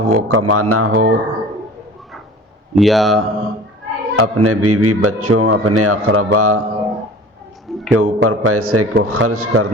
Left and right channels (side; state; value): both; normal; correlation 0.42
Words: کمانا ہو یا اپنے بیوی بچوں اپنے اقربا کے اوپر پیسے کو خرچ